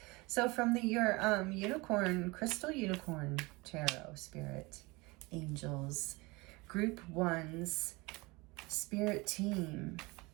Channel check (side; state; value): left; quieter; 24.3 dB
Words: So from your unicorn, crystal unicorn tarot, spirit, angels, group ones, spirit team,